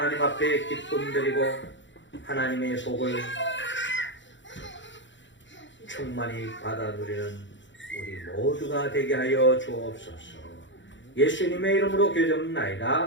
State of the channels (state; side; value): late; right; 0.54 ms